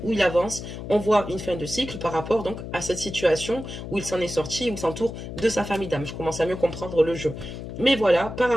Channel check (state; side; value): noise; left; hum, 9 dB below the sound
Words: où il avance. On voit une fin de cycle par rapport donc à cette situation où il s'en est sorti, où il s'entoure de sa famille d'âme. Je commence à mieux comprendre le jeu. Mais voilà, par